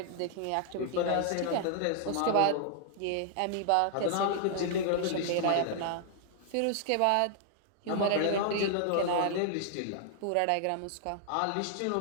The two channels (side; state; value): both; different; correlation 0.00